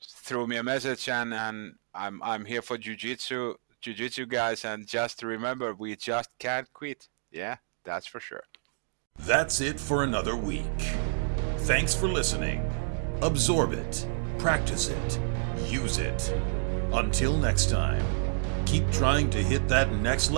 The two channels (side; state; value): left; silent; digital silence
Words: throw me a message, and I'm here for Jiu-Jitsu guys, and just remember, we just can't quit. Yeah, that's for sure. That's it for another week. Thanks for listening. Absorb it, practice it, use it. Until next time, keep trying to hit that next